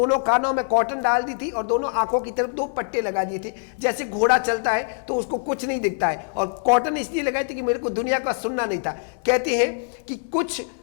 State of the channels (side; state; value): right; silent; 63 dB below the other